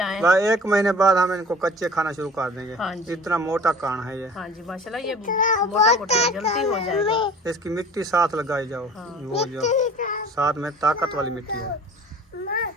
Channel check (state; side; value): normal; both; correlation 0.45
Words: 1 महीने बाद हम इनको कच्चे खाना शुरू कर देंगे। हाँ जी। इतना मोटा कान है ये। हाँ जी माशाल्लाह, ये मोटा मोटा जल्दी हो जाएगा। इसकी मिट्टी साथ लगाई जाओ। हाँ। वो जो साथ में ताकत वाली मिट्टी है।